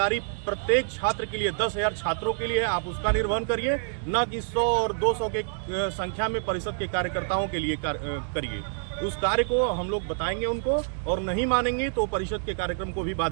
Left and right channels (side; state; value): left; silent; digital silence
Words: प्रत्येक छात्र के लिए 10,000 छात्रों के लिए है, आप उसका निर्वहन करिए। न कि 100 और 200 के संख्या में परिषद के कार्यकर्ताओं के लिए करिए। उस कार्य को हम लोग बताएंगे उनको, और नहीं मानेंगे तो परिषद के कार्यक्रम को भी